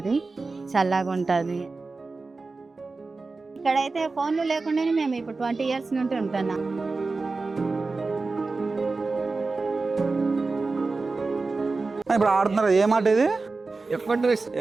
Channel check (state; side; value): quieter; left; 3.8 dB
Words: చల్లగా ఉంటుంది. ఇక్కడైతే ఫోన్లు లేకుండానే మేము ఇప్పుడు 20 years నుండి ఉంటున్నాం. ఇప్పుడు ఆడుతున్నారు ఏమాట ఇది?